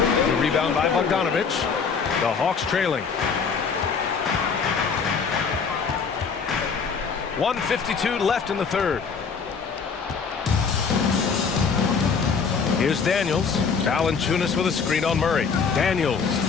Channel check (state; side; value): quieter; right; 5.7 dB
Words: rebound by Bogdanovich. The Hawks trailing. 1:52 left in the third. Here's Daniels. Valanciunas with a screen on Murray. Daniels.